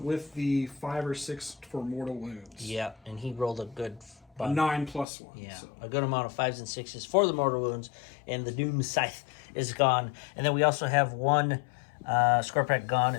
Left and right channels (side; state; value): right; drops out; at 5.1 s